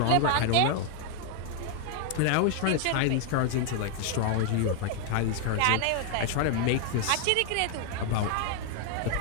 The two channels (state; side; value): different; both; correlation 0.00